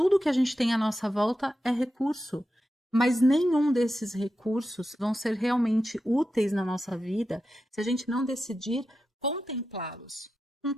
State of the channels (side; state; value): both; normal; correlation 0.90